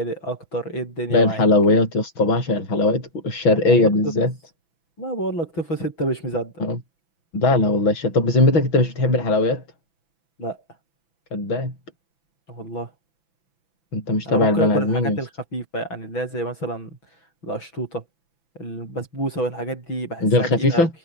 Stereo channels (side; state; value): right; late; 6.0 ms